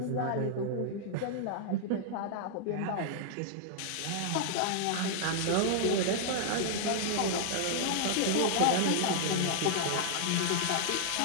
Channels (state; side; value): different; both; correlation -0.01